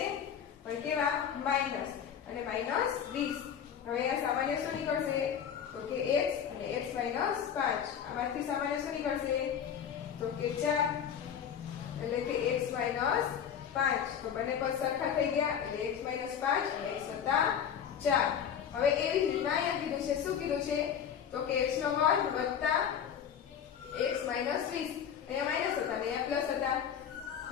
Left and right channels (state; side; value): quieter; right; 8.4 dB